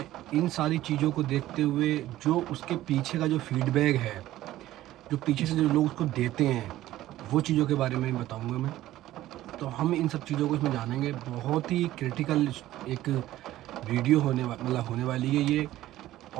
इन सारी चीज़ों को देखते हुए जो उसके पीछे का जो फीडबैक है, जो पीछे से जो लोग उसको देते हैं, वो चीज़ों के बारे में बताऊंगा मैं। तो हम इन सब चीज़ों को इसमें जानेंगे। बहुत ही क्रिटिकल एक वीडियो होने वाली है ये।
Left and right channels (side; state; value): left; quieter; 14.8 dB